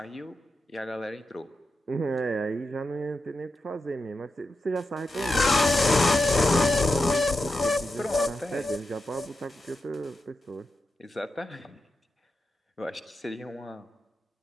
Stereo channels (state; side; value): normal; both; correlation 0.88